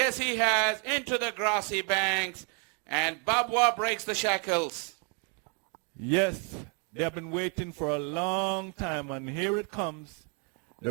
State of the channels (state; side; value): quieter; left; 37.2 dB